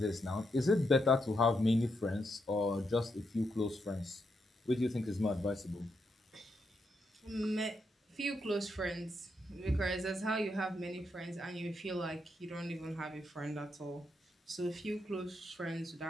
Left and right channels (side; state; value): both; normal; correlation 0.81